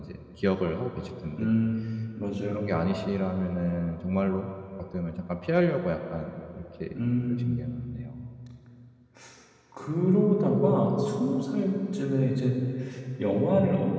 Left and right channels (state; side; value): identical; both; correlation 1.00